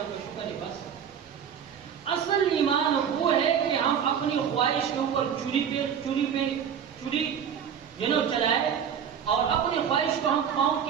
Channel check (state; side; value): quieter; left; 8.0 dB